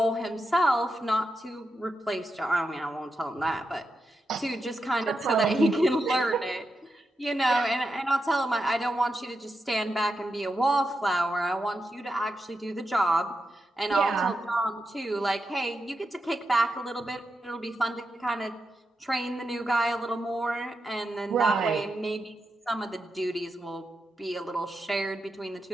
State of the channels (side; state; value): both; normal; correlation 0.87